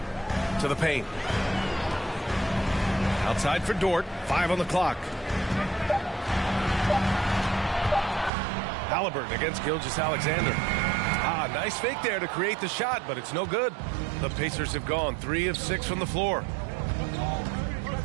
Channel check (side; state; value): left; drops out; at 8.3 s